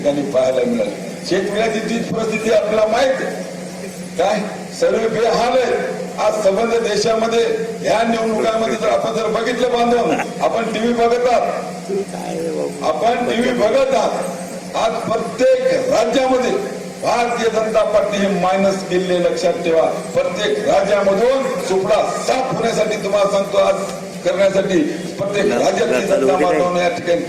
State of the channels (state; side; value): identical; both; correlation 1.00